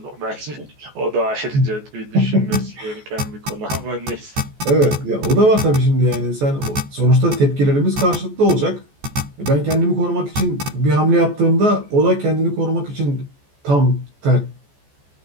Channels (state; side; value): late; left; 14 ms